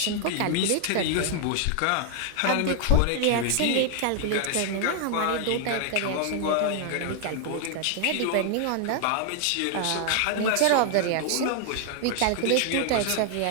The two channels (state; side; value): different; both; correlation 0.00